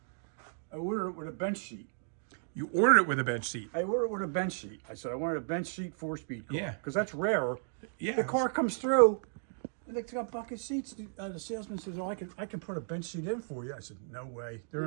I ordered it with a bench seat. You ordered it with a bench seat. I ordered it with a bench seat. I said I wanted a bench seat 4-speed car. Yeah. Because that's rare. Yeah. The car comes through, and they got bucket seats. The salesman says, "Oh, I can put a bench seat in for you." I said, "No way. They're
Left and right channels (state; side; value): silent; left; digital silence